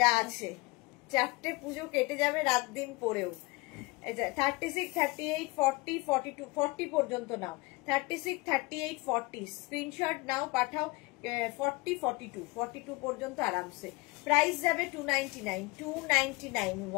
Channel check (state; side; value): quieter; right; 24.1 dB